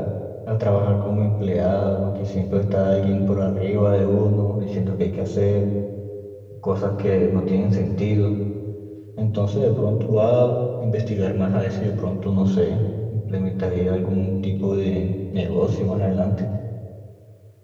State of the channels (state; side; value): identical; both; correlation 1.00